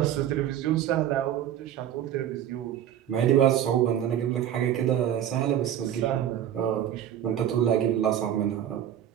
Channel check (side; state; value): left; quieter; 10.6 dB